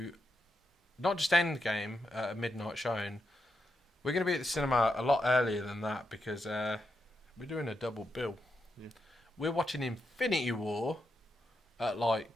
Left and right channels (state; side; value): normal; both; correlation 0.84